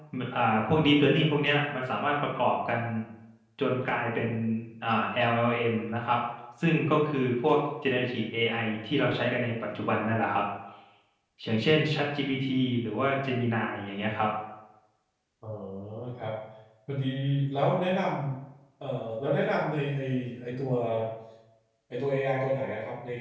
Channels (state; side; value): identical; both; correlation 1.00